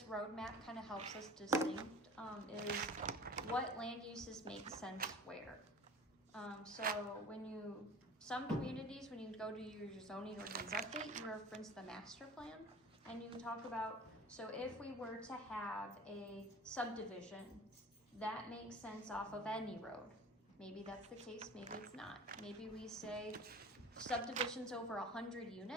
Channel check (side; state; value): both; normal; correlation 0.40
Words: roadmap kind of helps us distinct is what land uses make sense where. So some communities, when you go to your zoning ordinance update, you reference the master plan, and you talk about, so if we were to have a subdivision, that makes sense off of any road. Maybe that's the case, maybe it's not. Maybe we say subdivisions over 100